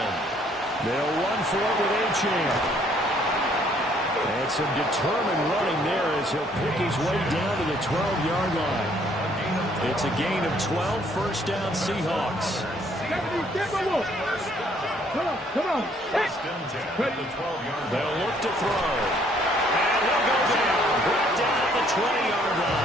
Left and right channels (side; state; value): both; normal; correlation 0.64